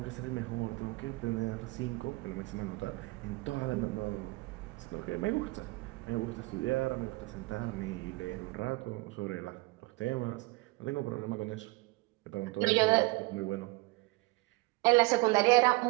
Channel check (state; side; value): quieter; left; 23.7 dB